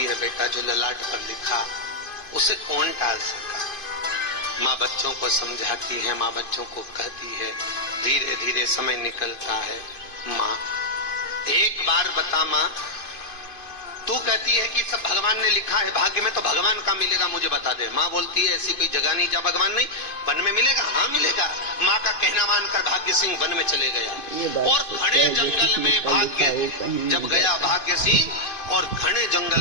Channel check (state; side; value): late; right; 2.5 ms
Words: है बेटा जो ललाट पर लिखा उसे कौन टाल सका। माँ बच्चों को समझाती है, माँ बच्चों को कहती है, धीरे धीरे समय निकलता है। माँ एक बार बता माँ, तू कहती है कि सब भगवान ने लिखा है भाग्य में, तो भगवान का मिलेगा मुझे बता दे। माँ बोलती है ऐसी कोई जगह नहीं जहाँ भगवान नहीं। वन में मिलेगा? हाँ मिलेगा। माँ का कहना मानकर भाग्य सिंह वन में चले गया और घने जंगल में जब गया भाग्य सिंह, और घने